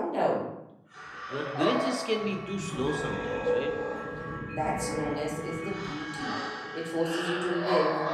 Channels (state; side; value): identical; both; correlation 1.00